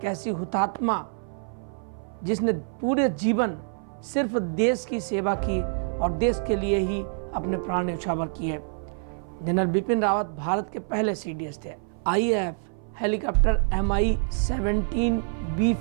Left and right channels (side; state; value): left; silent; 58 dB below the other